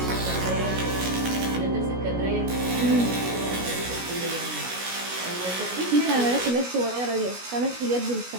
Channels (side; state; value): left; late; 16 ms